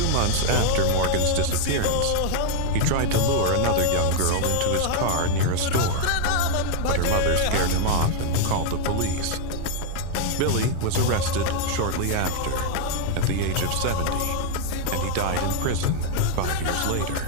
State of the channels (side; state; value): both; different; correlation 0.00